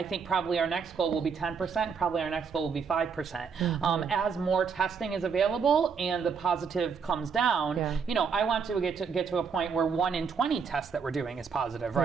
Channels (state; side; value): quieter; left; 6.0 dB